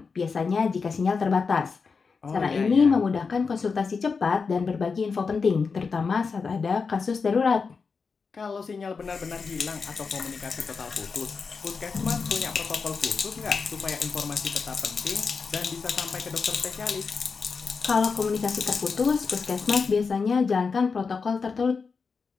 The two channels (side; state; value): right; quieter; 5.1 dB